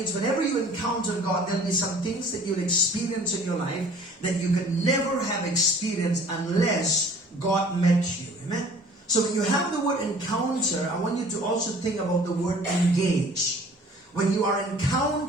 whenever you encounter God, there'll be some things that you'll experience in your life that you can never have experienced unless God met you. Amen. So when you have the word encounter, I want you to also think about the word engage. When you are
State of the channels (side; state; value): both; normal; correlation 0.50